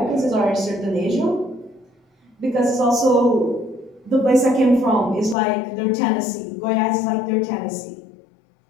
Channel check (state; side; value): drops out; right; at 5.4 s